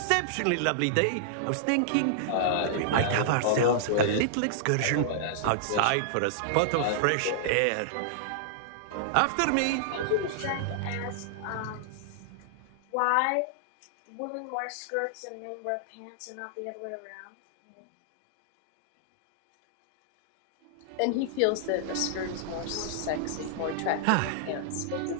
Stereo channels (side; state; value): both; different; correlation -0.01